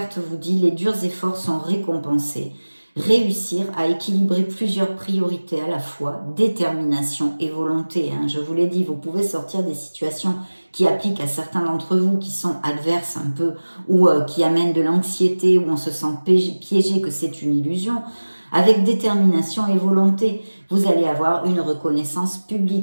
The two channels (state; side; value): inverted; both; correlation -1.00